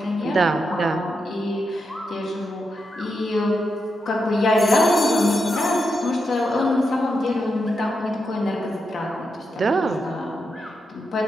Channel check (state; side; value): normal; both; correlation 0.85